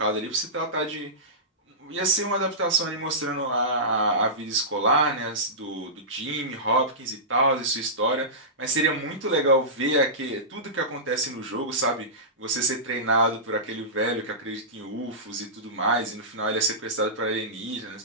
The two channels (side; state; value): both; normal; correlation -0.18